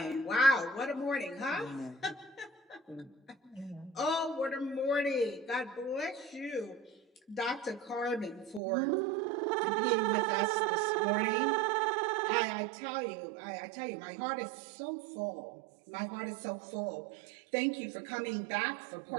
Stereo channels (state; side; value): drops out; left; at 8.6 s